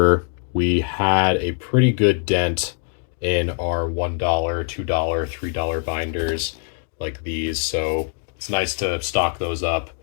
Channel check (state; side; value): silent; right; 57 dB below the other